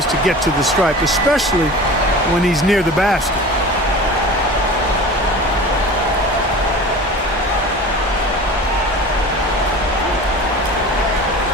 to get to the stripe, especially when he's near the basket.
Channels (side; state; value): both; normal; correlation 0.37